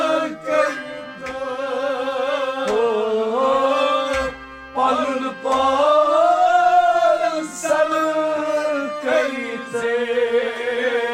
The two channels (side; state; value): both; identical; correlation 1.00